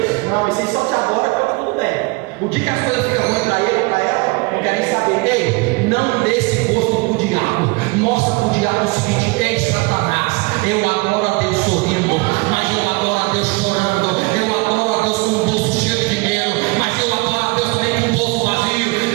Não, isso aí só de agora está tudo bem. O dia que as coisas ficam ruins para ele, para ela, não quer nem saber. Ei, não dê esse gosto para o diabo. Mostra para o diabo o seguinte: ei, Satanás, eu adoro a Deus sorrindo, mas eu adoro a Deus chorando, eu adoro a Deus com o bolso cheio de dinheiro, mas eu adoro a Deus também com o bolso vazio.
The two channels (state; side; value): quieter; left; 26.4 dB